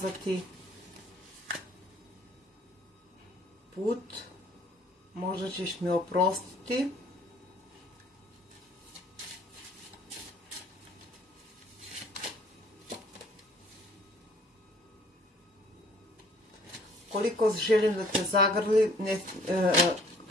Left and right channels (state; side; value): normal; both; correlation 0.57